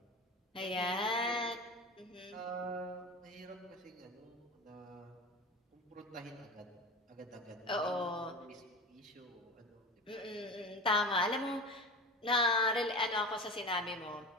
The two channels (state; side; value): normal; both; correlation 0.30